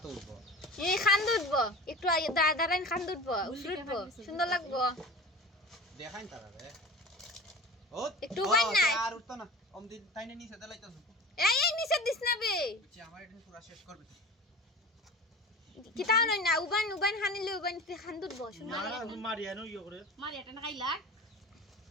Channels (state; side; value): normal; both; correlation 0.36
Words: উঠবো এই খান দুধবো একটু দাঁড়াইন খান দুধবো উঠবো সুন্দর লাগবো দেখাইন তারা রে ও একটু উবাই নাই আর উঠতো না অমদি তাইনে নিচে দেলাইতাছ এই নিচে দিস না বে আমার এটা পুরো শেষ করবে কি তাও নই না উবান হানিলে উবান খান দুধবো সুন্দর না মারিয়া নো ইয়ে করে মারিয়াটা না খাইলা